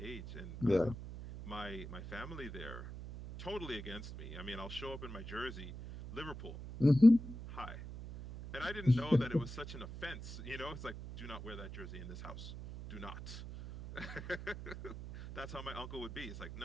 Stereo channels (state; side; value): noise; right; hum, 10 dB below the sound